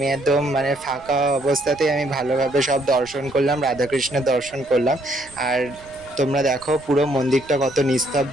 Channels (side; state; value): right; noise; rumble, 24 dB below the sound